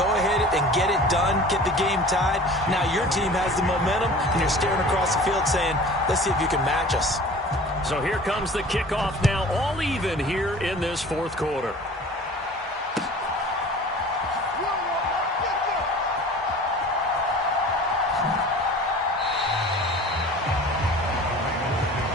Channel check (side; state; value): both; normal; correlation 0.43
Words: ahead and get it done, get the game tied. Now your team has the momentum, and you're staring across the field saying, let's see if you can match us. So here comes the kickoff now, all even here in this 4th quarter.